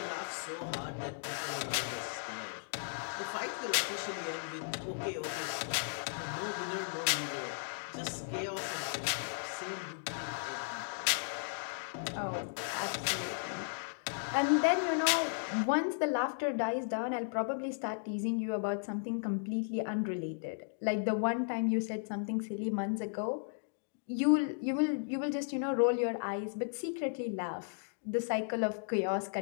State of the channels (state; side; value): silent; right; digital silence